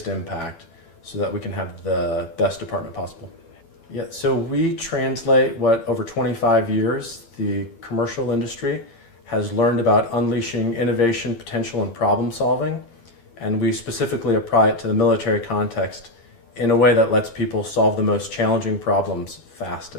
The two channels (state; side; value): late; right; 12 ms